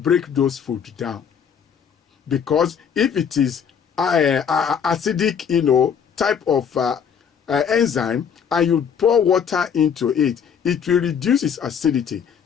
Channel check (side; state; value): right; quieter; 7.4 dB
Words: those food down. Because if it is acidic, type of enzyme, and you pour water into it, it will reduce its acidity.